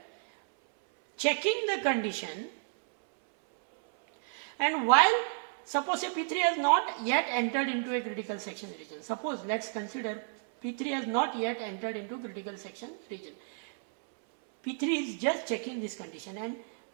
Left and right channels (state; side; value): silent; left; 57 dB below the other